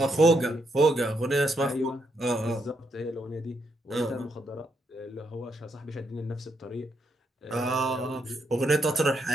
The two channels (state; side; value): normal; both; correlation 0.78